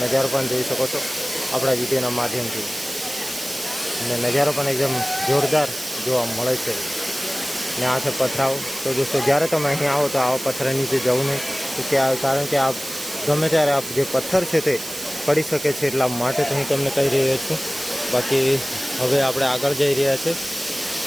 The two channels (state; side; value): noise; right; hiss, 10 dB below the sound